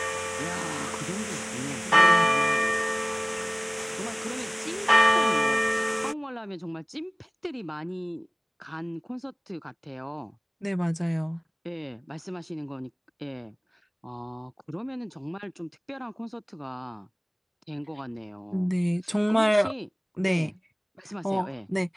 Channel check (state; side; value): identical; both; correlation 1.00